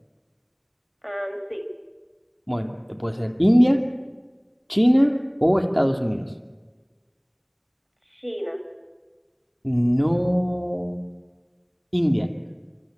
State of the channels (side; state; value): both; identical; correlation 1.00